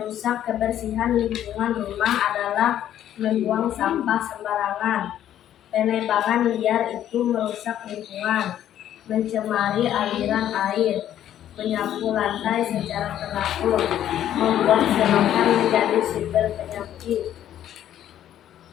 kebersihan lingkungan rumah adalah membuang sampah sembarangan. Penebangan liar itu merusak lingkungan, mencemari aliran air, menyapu lantai secara teratur, membuat selokan menjadi sumber penyakit.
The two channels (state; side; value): quieter; right; 11.2 dB